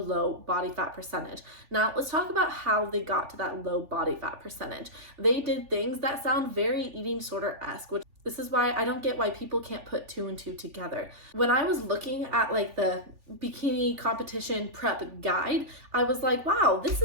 body fat percentage. Now, let's talk about how they got to that low body fat percentage. They did things that sound very eating disorder-esque, which this is why I don't get why people can't put two and two together. When I was looking at like the bikini competition prep guide, I was like, wow, this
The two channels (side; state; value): left; late; 3.4 ms